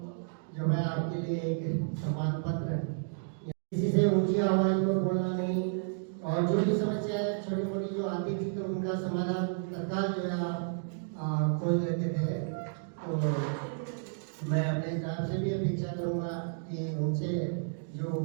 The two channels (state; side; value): silent; left; digital silence